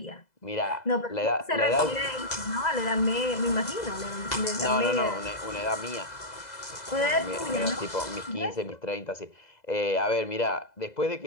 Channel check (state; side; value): late; right; 2.0 ms